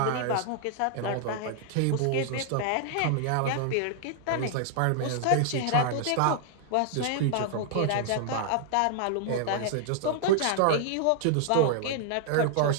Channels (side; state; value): both; different; correlation 0.00